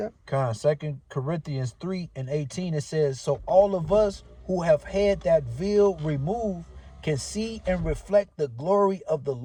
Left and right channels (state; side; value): identical; both; correlation 1.00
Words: 2 Corinthians 3:18, it says, so all of us who have had that veil removed can see and reflect the glory of the